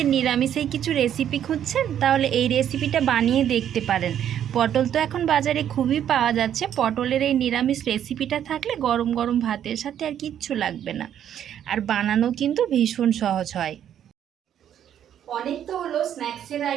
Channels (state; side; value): quieter; left; 10.0 dB